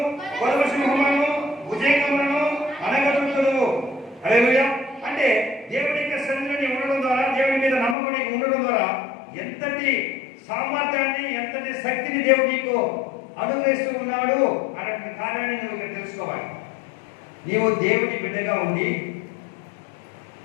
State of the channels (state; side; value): drops out; right; at 8.0 s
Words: కొదవ సింహములను, భుజంగములను అనగదొక్కుదువు. హల్లెలూయా. అంటే దేవుని యొక్క సన్నిధిని ఉండడం ద్వారా, దేవుని మీద నమ్మకం ఉండడం ద్వారా ఎంతటి సామర్థ్యాన్ని, ఎంతటి శక్తిని దేవుడు నీకు అనుగ్రహిస్తూ ఉన్నాడు అనే కార్యాన్ని నువ్వు ఇక్కడ తెలుసుకోవాలి. నీవు దేవుని బిడ్డగా ఉండి